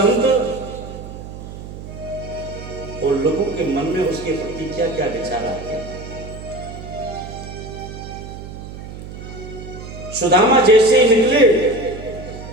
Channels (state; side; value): noise; right; hum, 12 dB below the sound